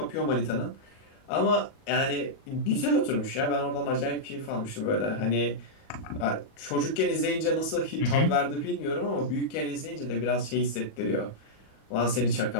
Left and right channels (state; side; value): late; right; 37 ms